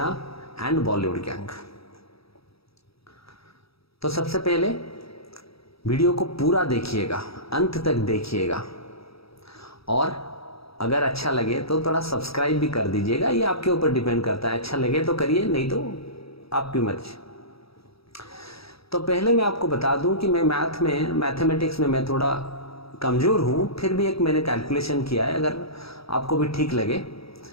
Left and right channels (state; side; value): late; right; 0.77 ms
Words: एंड बॉलीवुड गैंग। तो सबसे पहले वीडियो को पूरा देखिएगा, अंत तक देखिएगा और अगर अच्छा लगे तो थोड़ा सब्सक्राइब भी कर दीजिएगा। ये आपके ऊपर डिपेंड करता है, अच्छा लगे तो करिए, नहीं तो आपकी मर्जी। तो पहले मैं आपको बता दूं कि मैं मैथमेटिक्स में मैं थोड़ा कमज़ोर हूं, फिर भी एक मैंने कैलकुलेशन किया है। अगर आपको भी ठीक लगे